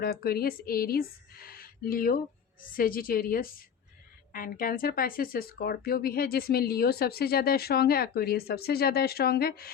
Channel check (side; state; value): right; quieter; 7.7 dB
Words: Aquarius, Aries, Leo, Sagittarius and cancer, Pisces, Scorpio भी है, जिसमें लियो सबसे ज़्यादा स्ट्रॉन्ग है, एक्वेरियस सबसे ज़्यादा स्ट्रॉन्ग है।